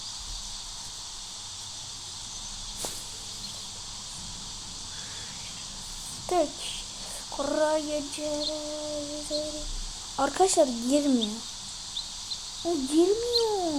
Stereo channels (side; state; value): both; identical; correlation 1.00